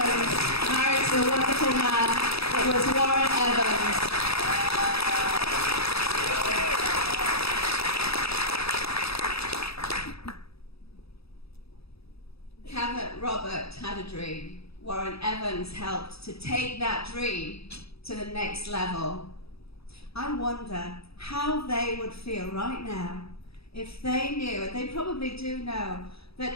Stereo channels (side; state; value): right; late; 0.77 ms